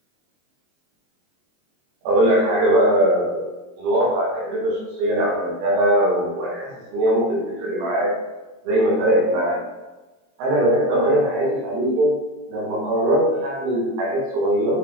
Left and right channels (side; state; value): left; late; 22 ms